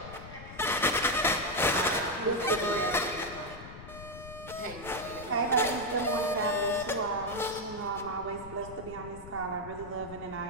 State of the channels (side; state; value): left; noise; rumble, 14 dB below the sound